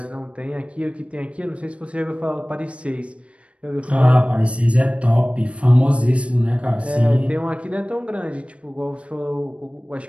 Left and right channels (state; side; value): late; left; 0.062 ms